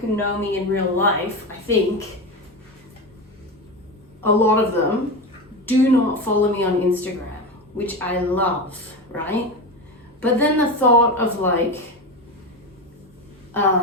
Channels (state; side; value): normal; both; correlation 0.20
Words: know me in real life, I think, a lot of them do not follow me on Instagram, which I love, right? But then the thought of like